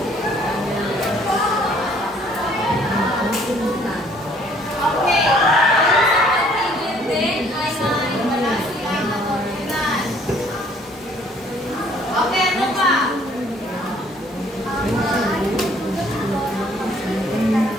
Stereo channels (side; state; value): both; normal; correlation 0.60